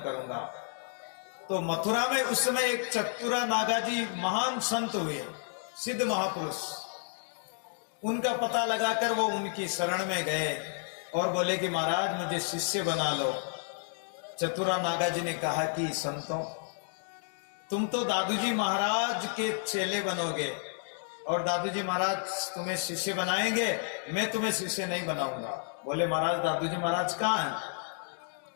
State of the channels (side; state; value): right; silent; 57 dB below the other